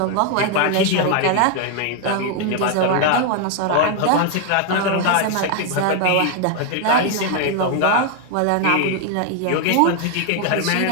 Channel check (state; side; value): different; both; correlation 0.00